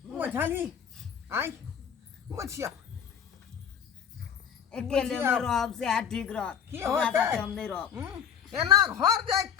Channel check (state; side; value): quieter; right; 8.3 dB